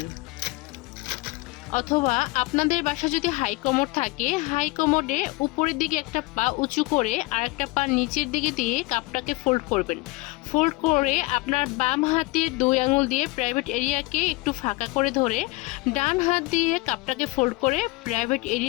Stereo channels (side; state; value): right; quieter; 22.7 dB